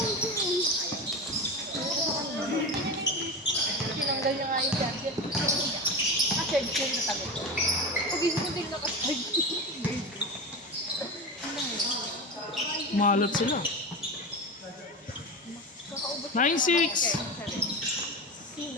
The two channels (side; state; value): both; normal; correlation 0.24